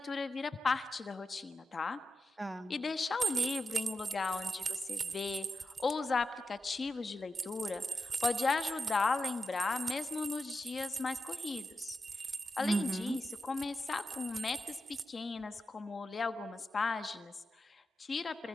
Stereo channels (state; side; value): normal; both; correlation 0.89